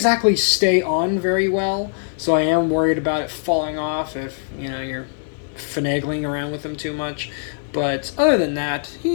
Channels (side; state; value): right; silent; digital silence